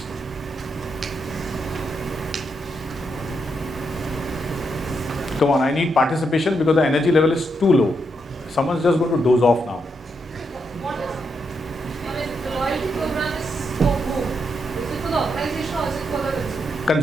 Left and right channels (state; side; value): normal; both; correlation 0.81